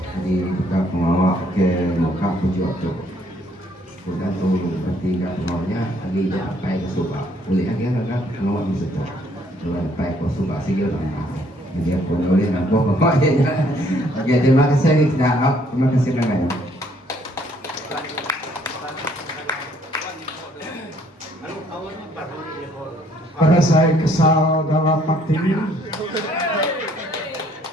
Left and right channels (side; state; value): both; normal; correlation 0.64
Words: jadi kita pengawal ke muka pujuk tu sudah tu bertiga pengawalnya lagi sampai ke Subang boleh lagi kan pengawal di situ sampai ke Subang sih orang jadi aku boleh nampak pokoknya. Oke terima kasih kita terima kasih banyak. Pada saya kesal dalam hati